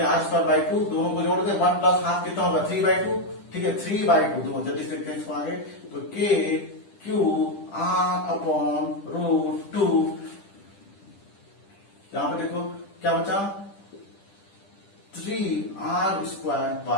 आर स्क्वायर बाई 2, दोनों को जोड़ के 1 प्लस हाफ कितना होगा 3/2। ठीक है, 3/2 दोनों जल्दी से देखते हैं इसको आगे। तो के क्यू आर अपॉन रूट 2, यहां पे देखो क्या बचा, 3r स्क्वायर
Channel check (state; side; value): late; right; 10 ms